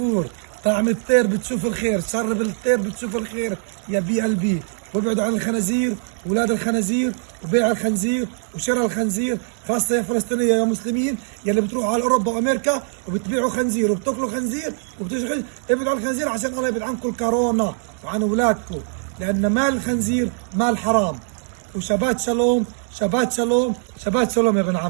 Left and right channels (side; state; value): left; silent; 63 dB below the other